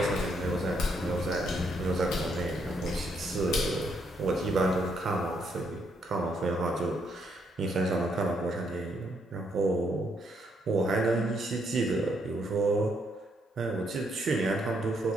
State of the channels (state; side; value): normal; both; correlation 0.74